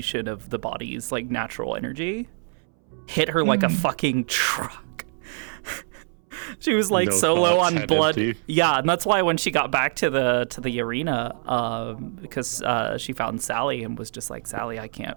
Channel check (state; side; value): silent; left; 62 dB below the other